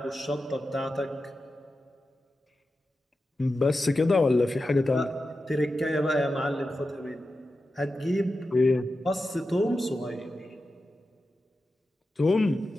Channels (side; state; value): both; normal; correlation 0.91